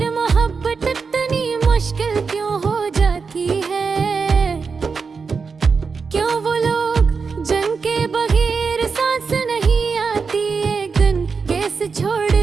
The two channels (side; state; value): left; quieter; 5.1 dB